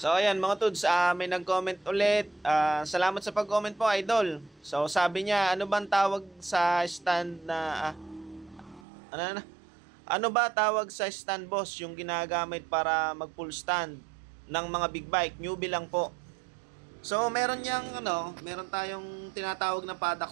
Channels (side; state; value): left; drops out; at 8.8 s